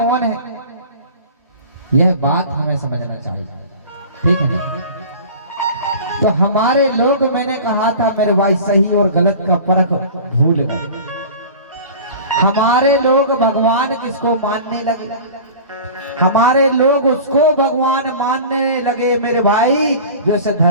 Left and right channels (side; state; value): both; inverted; correlation -0.39